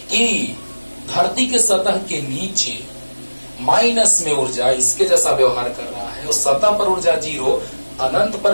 कि धरती के सतह के नीचे माइनस में ऊर्जा इसके जैसा व्यवहार कर रहा है, उस सतह पर ऊर्जा जीरो, अनंत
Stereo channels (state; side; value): inverted; both; correlation -1.00